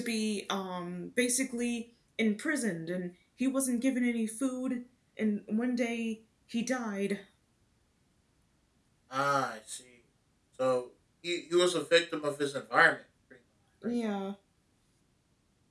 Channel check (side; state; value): both; identical; correlation 1.00